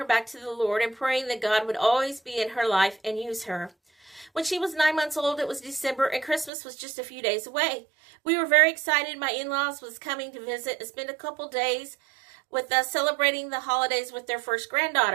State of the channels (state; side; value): drops out; left; at 6.5 s